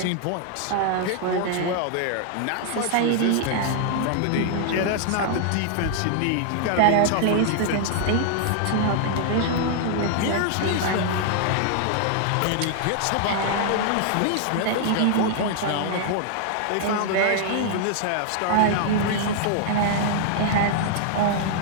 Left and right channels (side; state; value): both; different; correlation 0.00